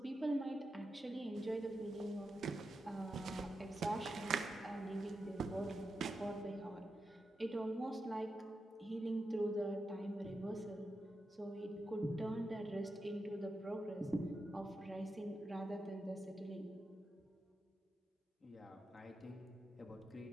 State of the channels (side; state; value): both; normal; correlation 0.88